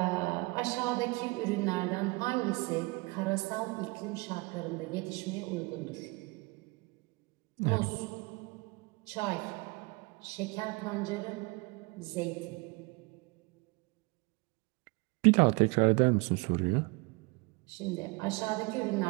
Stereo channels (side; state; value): left; quieter; 26.3 dB